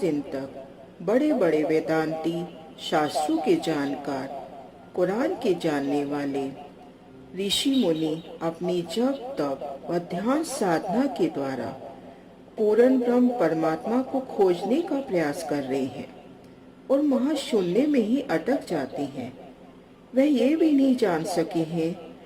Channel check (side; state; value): both; identical; correlation 1.00